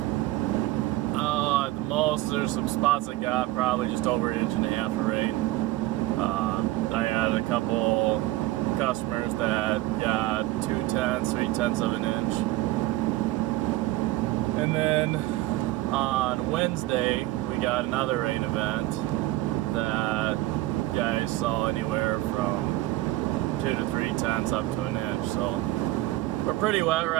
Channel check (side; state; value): left; quieter; 17.4 dB